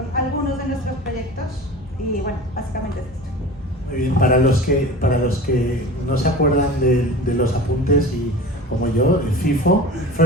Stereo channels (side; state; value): both; normal; correlation 0.36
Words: algunos de nuestros proyectos y bueno, básicamente es esto. Muy bien, para los que no se acuerdan de los apuntes y como yo, el FIFO,